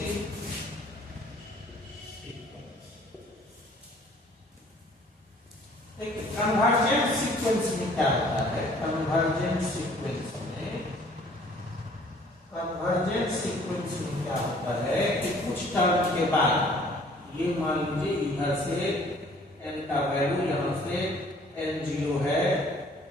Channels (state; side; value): normal; both; correlation 0.56